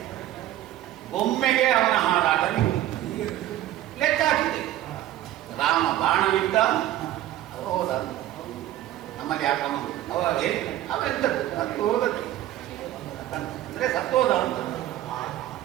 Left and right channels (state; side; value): quieter; left; 13.7 dB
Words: ಒಮ್ಮೆಗೆ ಅವನ ಹಾರಾಟ ಲೆಕ್ಕ ಹಾಕಿದೆ. ರಾಮ ಬಾಣವಿದ್ದ, ಹೋದ. ನಮ್ಮಲ್ಲಿ ಯಾಕಮ್ಮ ಅವೆಂತದ್ದು ಸತ್ತು ಹೋದದ್ದು ಅಂದ್ರೆ ಸತ್ತೋದ ಅಂತ